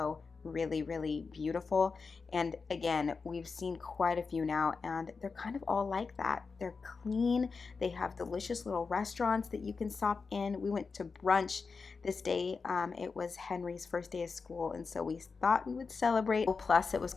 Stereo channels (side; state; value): right; quieter; 4.8 dB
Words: really, really beautiful. And again, we've seen quite a few now, and they're kind of all like that. They're clean. They have delicious little restaurants that you can stop in. We went to brunch this day. It was Henry's first day of school, and so we thought we would celebrate. Plus, it was